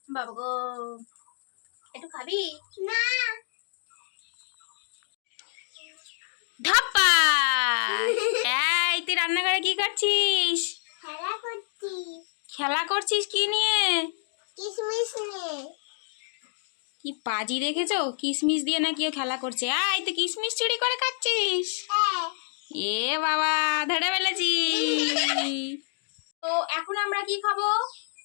বাবা গো, একটু খাবি না? ধাপ্পা। এই তুই রান্নাঘরে কি করছিস? খেলা করছি। খেলা করছিস কি নিয়ে? কিশমিশ নিয়ে। কি পাজি দেখেছো, কিশমিশ দিয়ে না কেউ খেলা করছে। আয় তুই কিশমিশ চুরি করে খাচ্ছিস? এ বাবা, ধরে ফেলেছি। তো এখন আমরা কি খাবো?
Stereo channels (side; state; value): right; silent; 60 dB below the other